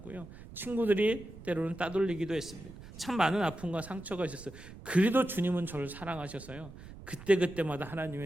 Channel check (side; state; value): right; noise; rumble, 16 dB below the sound